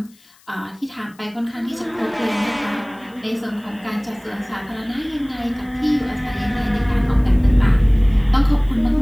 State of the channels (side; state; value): left; noise; hiss, 30 dB below the sound